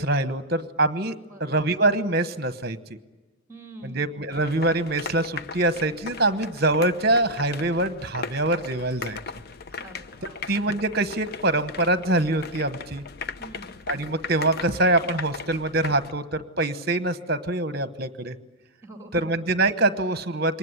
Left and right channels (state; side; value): normal; both; correlation -0.04